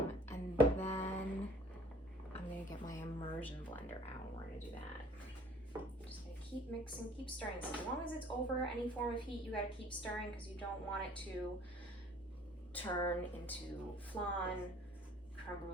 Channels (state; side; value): normal; both; correlation 0.53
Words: And then I'm gonna get my immersion blender out. We're gonna do that. Just gonna keep mixing, keep stirring. So as long as it's over any form of heat, you gotta keep stirring because you don't want it to turn into flan, creme